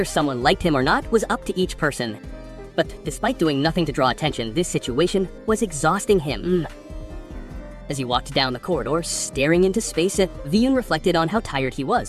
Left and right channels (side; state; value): both; identical; correlation 1.00